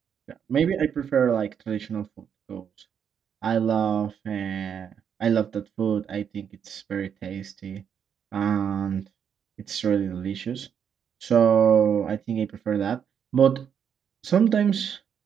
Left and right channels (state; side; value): quieter; left; 7.9 dB